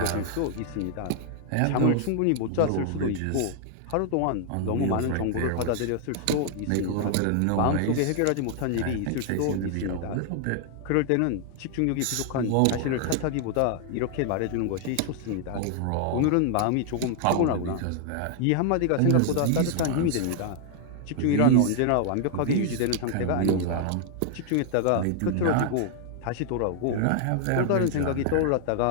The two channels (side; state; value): both; different; correlation 0.00